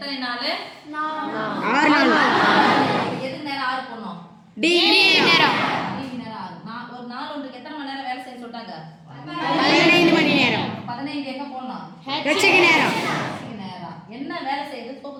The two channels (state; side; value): identical; both; correlation 1.00